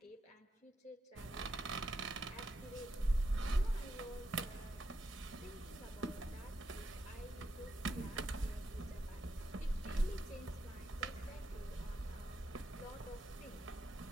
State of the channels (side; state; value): both; normal; correlation 0.83